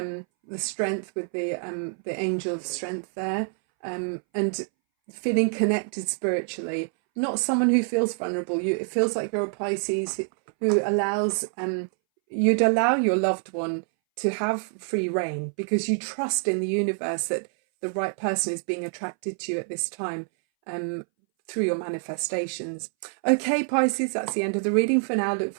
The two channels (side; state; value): left; silent; 61 dB below the other